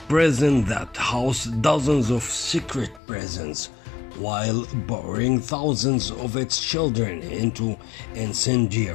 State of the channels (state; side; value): drops out; right; at 3.0 s